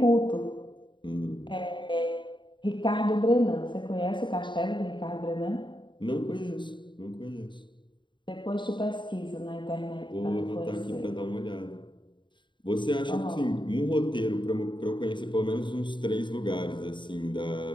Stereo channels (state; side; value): late; right; 0.23 ms